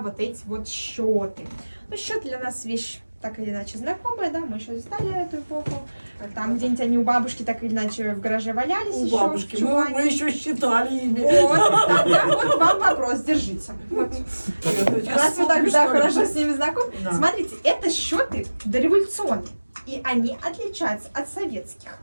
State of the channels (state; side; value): inverted; both; correlation -1.00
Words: вот эти вот счеты. Ну, счеты для нас вещь так или иначе знакомая, да, мы еще застали эту эпоху. Там где-нибудь они у бабушки так или иначе в гараже валялись. У еще, бабушки. в чулане. Мы еще считали ими. Вот, тогда вот вам вопрос, держите. Вот. Раз вы так да, хорошо с ними знакомы. Да. Смотрите, это счеты дореволюционные. И они отличаются от советских.